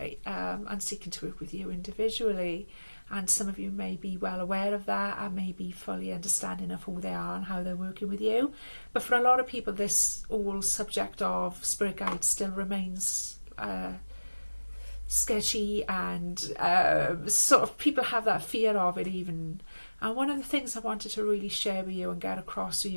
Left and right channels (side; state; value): both; inverted; correlation -1.00